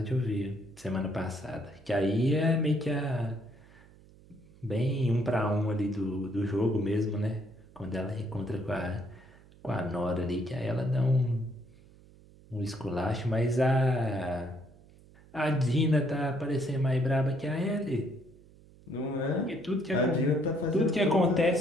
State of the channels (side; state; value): right; noise; hum, 25 dB below the sound